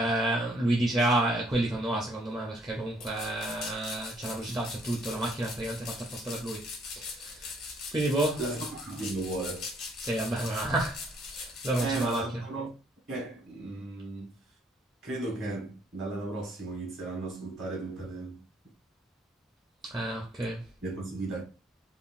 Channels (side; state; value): both; normal; correlation 0.66